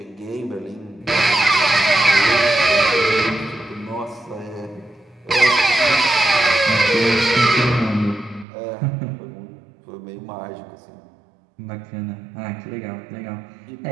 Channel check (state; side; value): drops out; left; at 8.5 s